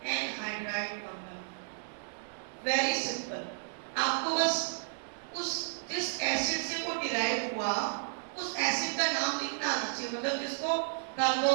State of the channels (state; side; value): silent; left; digital silence